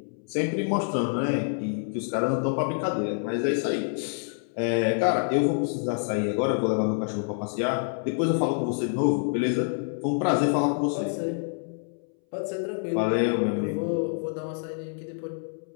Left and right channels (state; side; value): silent; right; 60 dB below the other